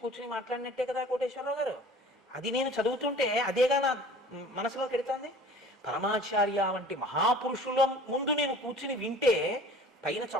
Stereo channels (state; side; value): normal; both; correlation 0.46